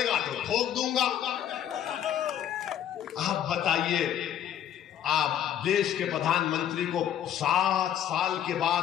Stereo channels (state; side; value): quieter; right; 10.3 dB